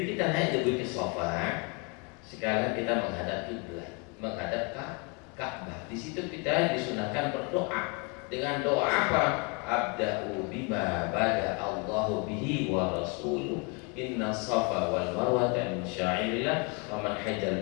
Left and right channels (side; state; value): right; quieter; 32.9 dB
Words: kita naik di Bukit Sofa. Sekarang kita menghadap kiblat, menghadap Ka'bah. Di situ kita disunahkan berdoa dengan doa apa? Abda'u bima bada Allahu bihi wa rasuluh. Inna safa wal marwata min sya'irillah wa man hajjal